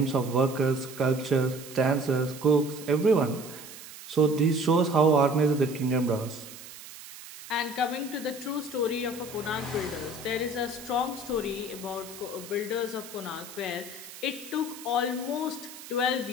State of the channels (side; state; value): right; noise; hiss, 15 dB below the sound